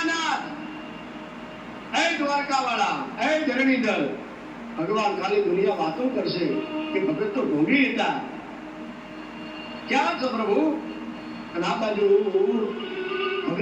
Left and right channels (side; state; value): both; identical; correlation 1.00